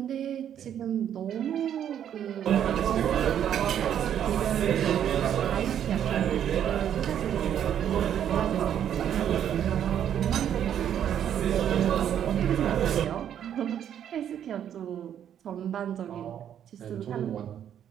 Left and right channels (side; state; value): left; quieter; 9.7 dB